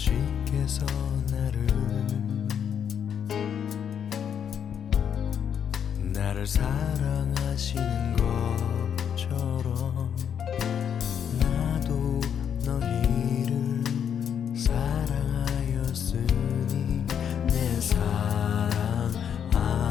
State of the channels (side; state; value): right; quieter; 8.3 dB